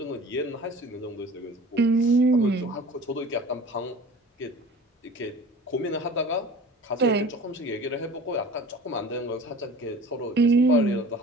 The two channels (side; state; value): both; normal; correlation 0.42